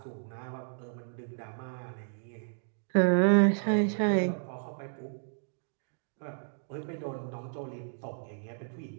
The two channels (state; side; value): silent; left; digital silence